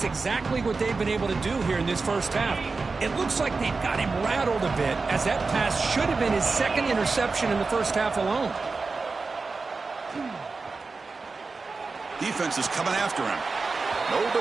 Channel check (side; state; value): left; quieter; 4.1 dB